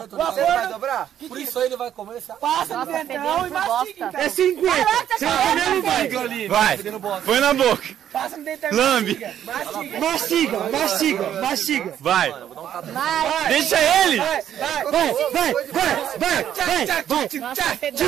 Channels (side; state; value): left; quieter; 10.3 dB